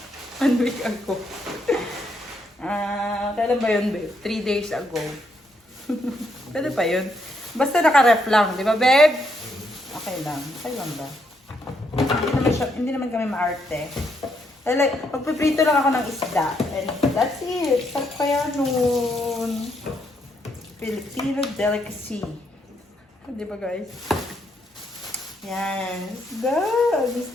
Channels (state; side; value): normal; both; correlation 0.76